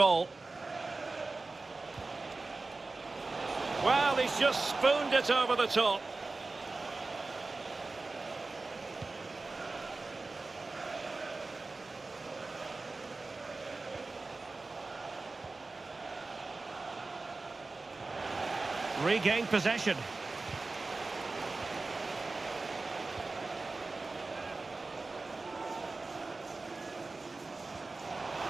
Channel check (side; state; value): left; quieter; 3.5 dB